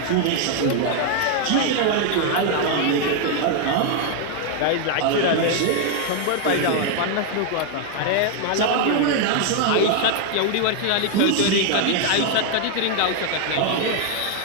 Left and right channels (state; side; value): different; both; correlation 0.00